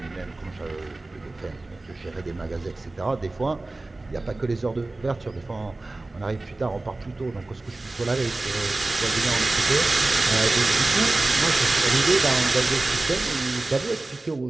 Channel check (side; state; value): left; quieter; 3.0 dB